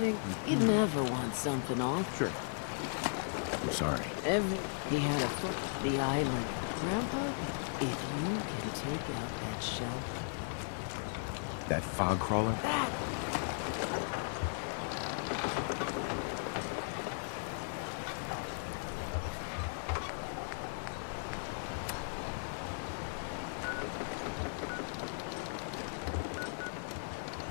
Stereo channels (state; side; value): silent; right; 53 dB below the other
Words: you'd never want something off. Sure. I'm sorry. He had a foot to the island. Grandpa, if you can take out that shelf... That fog crawler? That...